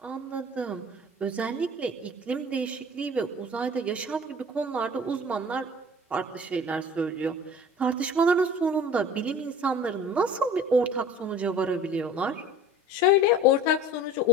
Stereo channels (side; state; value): both; normal; correlation 0.43